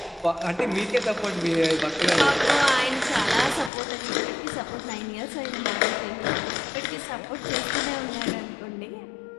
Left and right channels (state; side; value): drops out; right; at 3.7 s